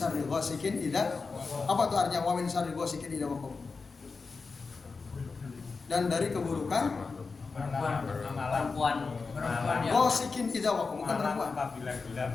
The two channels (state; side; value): quieter; right; 4.5 dB